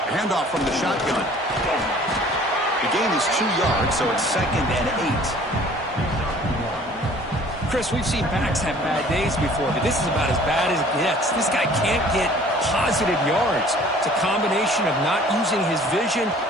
Handoff from the shotgun. The gain is 2 yards, so it's 2nd and 8. Chris, we've seen backs have bad days before, but this is about as bad as it gets. This guy can't get positive yards. It's a combination of not using his vision,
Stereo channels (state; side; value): normal; both; correlation 0.52